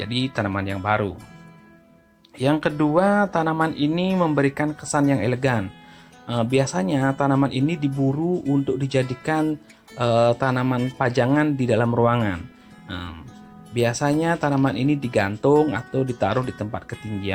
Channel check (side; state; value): both; identical; correlation 1.00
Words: tanaman yang baru. Yang kedua, tanaman ini memberikan kesan yang elegan. Biasanya tanaman ini diburu untuk dijadikan tanaman pajangan di dalam ruangan. Biasanya tanaman ini digantung atau ditaruh di tempat